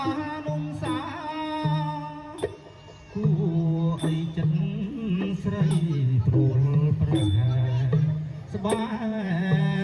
នុសាគួរអីចិត្តស្រីព្រួលប្រហែស្បែ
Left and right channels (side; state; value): both; identical; correlation 1.00